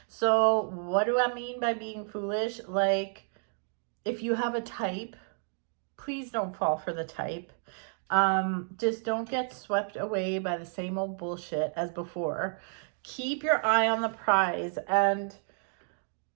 So what do I mean by being foolish? Like, if you have a type, please don't fall for the type. Just don't get swept away by the same old bullshit as before. Keep your eye on the prize and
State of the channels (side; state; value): left; silent; 57 dB below the other